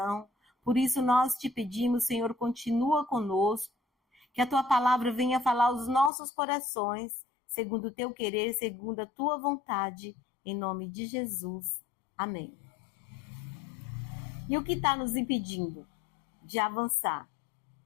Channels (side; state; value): right; drops out; at 6.1 s